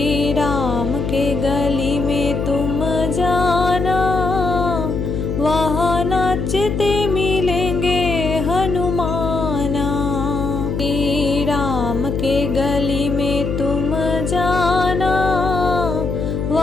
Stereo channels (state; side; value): noise; left; hum, 2 dB below the sound